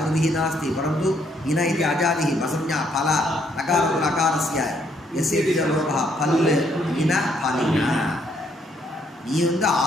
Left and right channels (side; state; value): both; normal; correlation 0.70